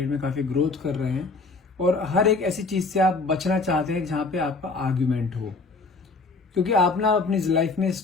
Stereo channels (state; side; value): quieter; right; 3.8 dB